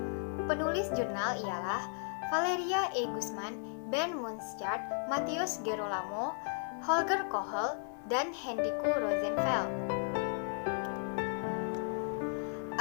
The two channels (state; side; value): silent; right; 55 dB below the other